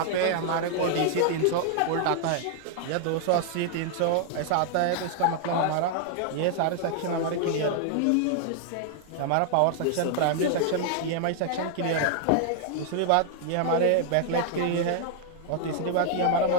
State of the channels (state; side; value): different; both; correlation 0.00